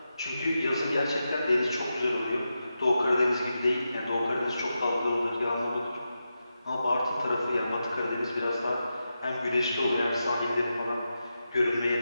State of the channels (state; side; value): inverted; both; correlation -0.89